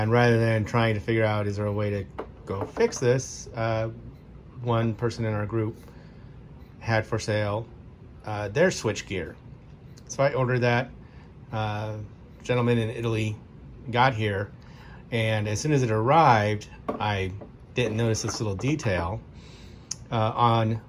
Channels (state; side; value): identical; both; correlation 1.00